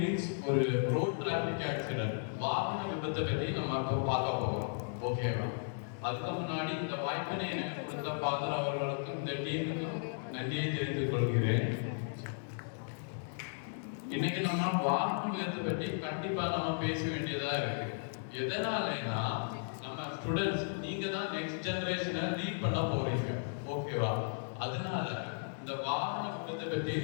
ஒரு ரோட் டிராபிக் ஆக்சிடென்ட், வாகன விபத்தை பற்றி நம்ம இப்போ பார்க்க போகிறோம். ஓகேவா? அதுக்கு முன்னாடி இந்த வாய்ப்பினை எனக்கு கொடுத்த ஃபாதர் அவர்களுக்கும் இந்த டீமுக்கும் நன்றியை தெரிவித்துக் கொள்கிறேன். இன்னைக்கு நம்ம வாகன விபத்தை பற்றி கண்டிப்பா நம்ம பேச வேண்டியதா இருக்கு. எதனாலனா நம்ம ஸ்டூடெண்ட்ஸ், நீங்க தான் நெக்ஸ்ட் ஜெனரேஷனை லீட் பண்ண போறீங்க. ஓகேவா? அதனால இந்த வாகன விபத்தை பற்றி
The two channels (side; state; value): right; silent; digital silence